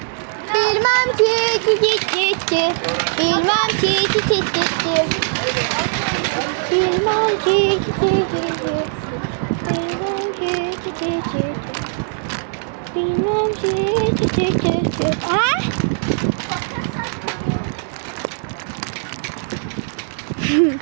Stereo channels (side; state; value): left; silent; 59 dB below the other